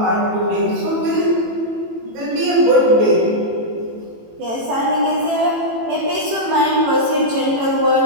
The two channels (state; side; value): late; left; 18 ms